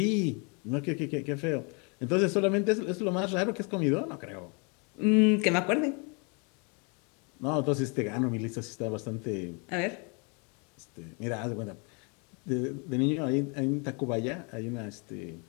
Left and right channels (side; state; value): right; quieter; 34.1 dB